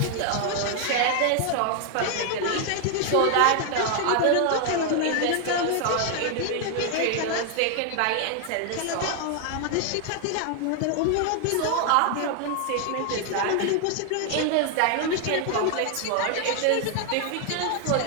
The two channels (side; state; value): both; different; correlation 0.00